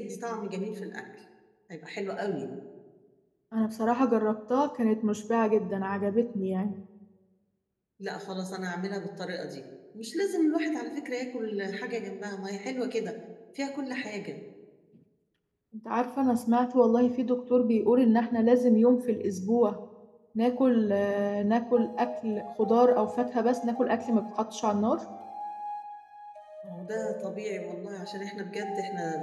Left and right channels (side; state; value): both; identical; correlation 1.00